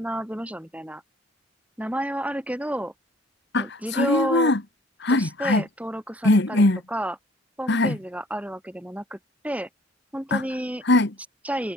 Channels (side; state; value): both; normal; correlation 0.55